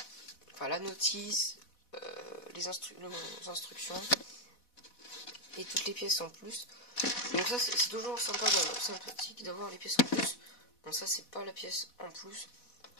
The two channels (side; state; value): right; late; 4.1 ms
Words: Enfin la notice, les instructions et toutes les pièces en plus. Donc ça c'est toujours sympathique d'avoir les pièces en plus. Bon ça c'est pas la pièce en plus.